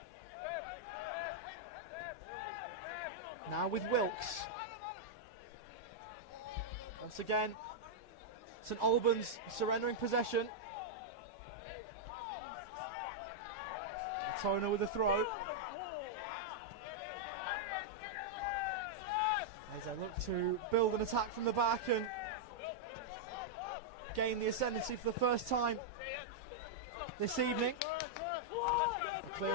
Now with Wilkes. Once again, St Albans surrendering possession. Altona with a throw. As they look to build an attack from the back and gain the ascendancy for the first time this evening. A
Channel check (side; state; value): both; normal; correlation -0.04